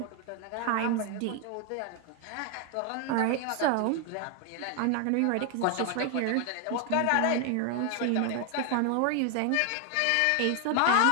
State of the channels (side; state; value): both; different; correlation 0.00